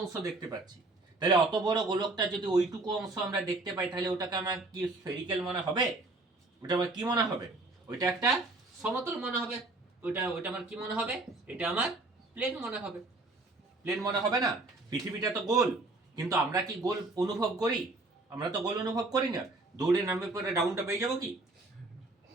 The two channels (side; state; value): left; quieter; 3.1 dB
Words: দেখতে পাচ্ছি? তাহলে অত বড় গোলকটা যদি ওইটুকু অংশ আমরা দেখতে পাই, তাহলে ওটাকে আমার কি স্ফেরিক্যাল মনে হবে? ওটা আমার কি মনে হবে? ওইটা একটা সমতল মনে হবে। ওইটা আমার কি মনে হবে? এটা আমার প্লেন মনে হবে। প্লেন মনে হবে না? পৃথিবীটা তো গোল, কিন্তু আমরা কি গোল অনুভব করি? আমরা তো গোল অনুভব করি না। দৌড়ে নামবে পরে ডাউনটা পেয়ে যাবো কি?